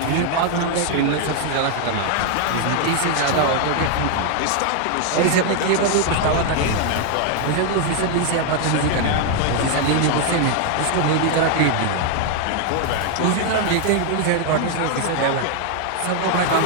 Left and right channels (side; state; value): both; different; correlation 0.00